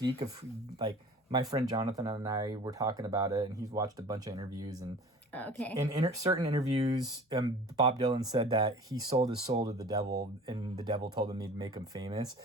of like my friend Jonathan and I were talking about it, and he's watched a bunch of interviews and. Okay. In certain interviews, Bob Dylan said that he sold his soul to the devil, and the devil told him he'd make him famous.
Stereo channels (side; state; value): both; normal; correlation 0.43